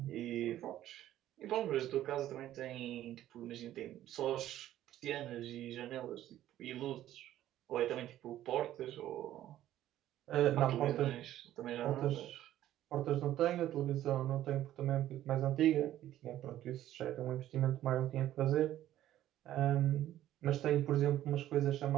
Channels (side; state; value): left; quieter; 13.0 dB